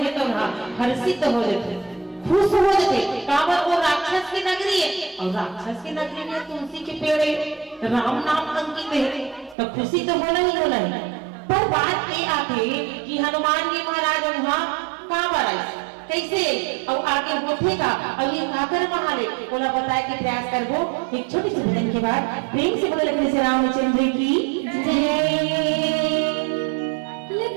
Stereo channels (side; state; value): left; drops out; at 9.6 s